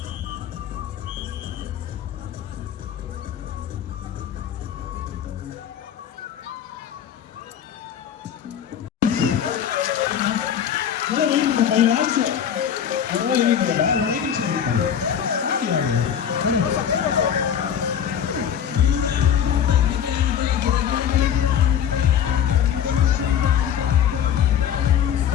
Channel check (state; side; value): quieter; right; 8.9 dB